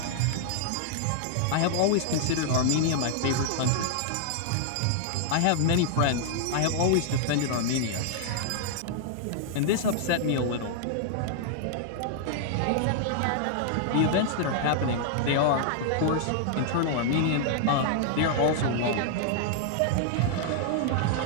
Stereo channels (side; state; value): both; different; correlation -0.01